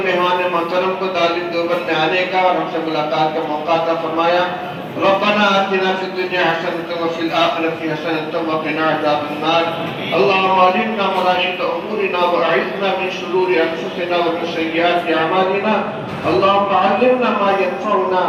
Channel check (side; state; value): both; identical; correlation 1.00